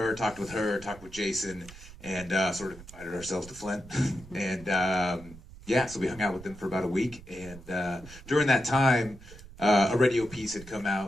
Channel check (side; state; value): right; noise; rumble, 18 dB below the sound